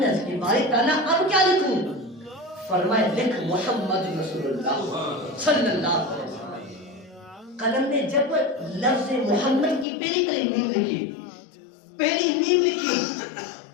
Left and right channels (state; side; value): drops out; right; at 9.9 s